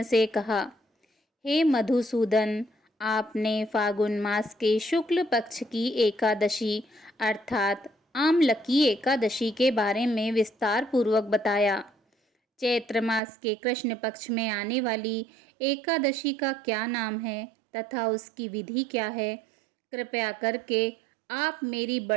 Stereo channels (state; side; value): drops out; left; at 13.2 s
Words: से कहा, हे मधुसूदन, आपने फागुन मास के शुक्ल पक्ष की एकादशी अर्थात आमलकी एकादशी के बारे में विस्तार पूर्वक बताया। चैत्र मास के कृष्ण पक्ष में आने वाली एकादशी का क्या नाम है तथा उसकी विधि क्या है, कृपया करके आप मेरी